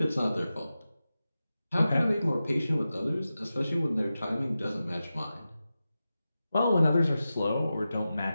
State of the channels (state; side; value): inverted; both; correlation -0.93